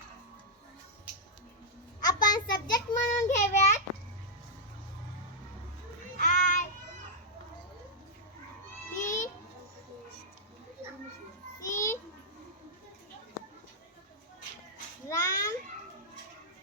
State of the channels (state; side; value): normal; both; correlation -0.06